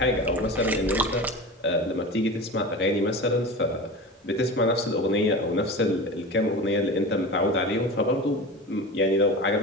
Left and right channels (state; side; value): normal; both; correlation 0.30